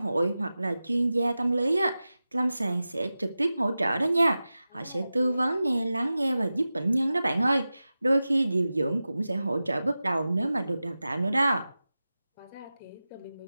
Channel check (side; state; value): both; inverted; correlation -0.95